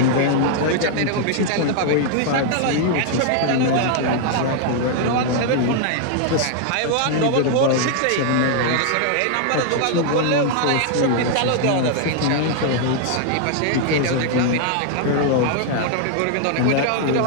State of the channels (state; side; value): different; both; correlation 0.00